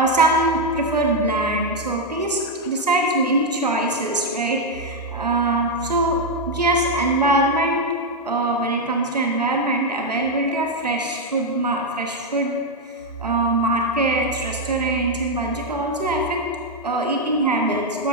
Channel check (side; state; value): both; normal; correlation 0.02